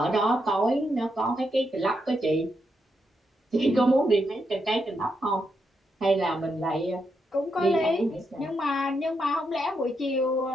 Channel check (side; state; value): both; normal; correlation 0.82